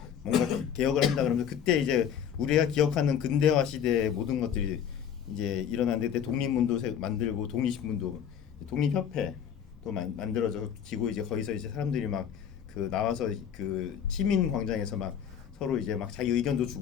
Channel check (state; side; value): quieter; right; 8.6 dB